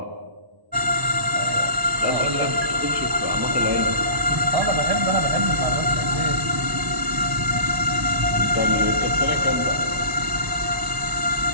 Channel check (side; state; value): left; late; 1.0 ms